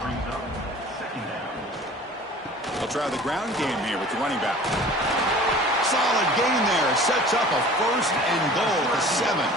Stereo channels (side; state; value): both; normal; correlation 0.45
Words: try the ground game here with the running back. Solid gain there. Sets up a 1st and goal at the 7.